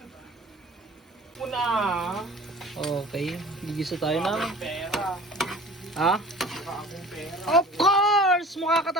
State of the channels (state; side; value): normal; both; correlation 0.44